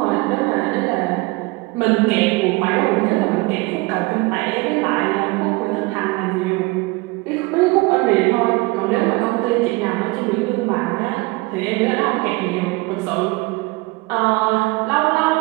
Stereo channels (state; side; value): quieter; left; 23.7 dB